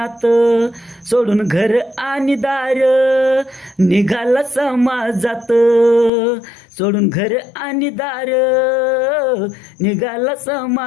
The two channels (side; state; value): right; drops out; at 6.1 s